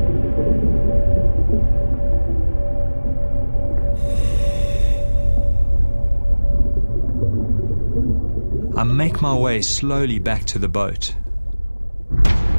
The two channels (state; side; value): inverted; both; correlation -1.00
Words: I make my way slowly back to the boat.